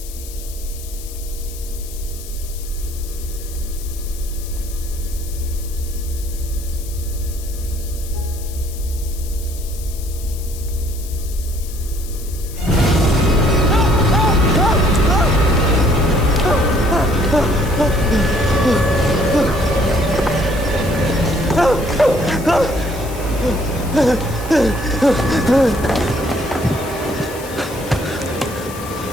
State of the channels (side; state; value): left; noise; hiss, 15 dB below the sound